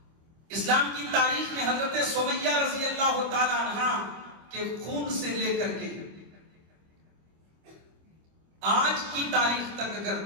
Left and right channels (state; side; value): late; left; 25 ms